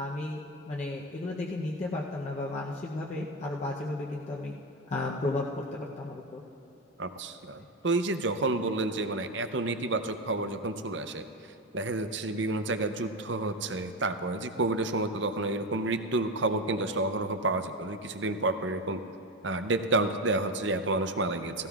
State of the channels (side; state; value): both; normal; correlation 0.15